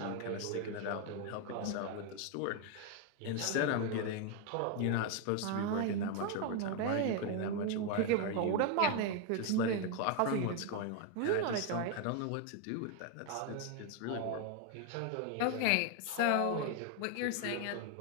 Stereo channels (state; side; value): different; both; correlation 0.01